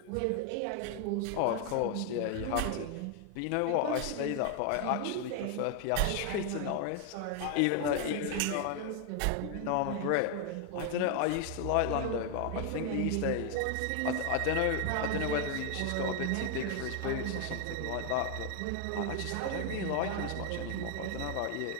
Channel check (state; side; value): different; both; correlation 0.00